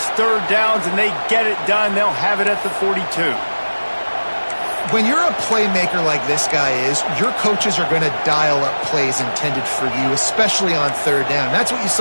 third downs, and they get it done. They'll have it at the 42. When you're a playmaker like this guy is, your coaches are going to dial up plays intended for you, especially on third down. That's what you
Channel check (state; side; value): inverted; both; correlation -1.00